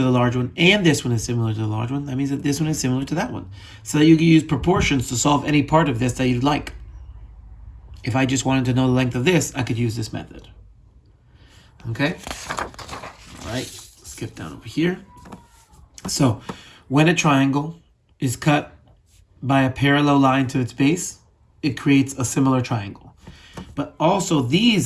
the large one and this one is similar to the large one, that means that this one is similar to that one. So that you can use proportions to solve any part of this that you'd like. If I just wanted to know the length of this, I could use this method. Okay, all right, skip down over here. So when a triangle is cut by a parallel line to its base, it creates a similar triangle. But also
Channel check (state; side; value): identical; both; correlation 1.00